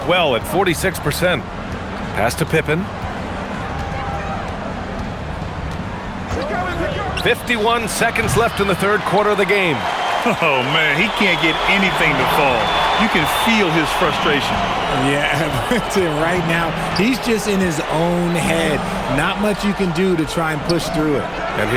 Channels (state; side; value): identical; both; correlation 1.00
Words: well at 46%. Pass to Pippen. 51 seconds left in the third quarter of the game. Oh, man, he can't get anything to fall. You can feel his frustration. Yeah, right now, he's just in his own head. Not much you can do to try and push through it. And